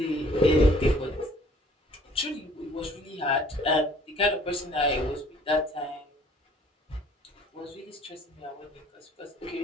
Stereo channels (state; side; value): normal; both; correlation 0.56